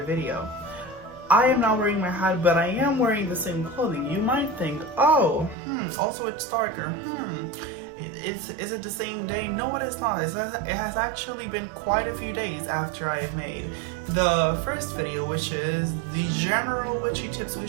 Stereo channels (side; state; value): left; drops out; at 5.6 s